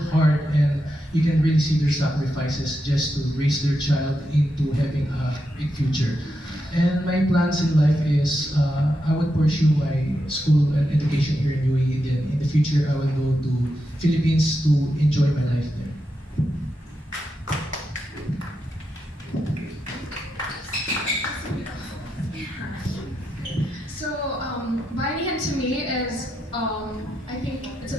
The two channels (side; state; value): both; normal; correlation 0.85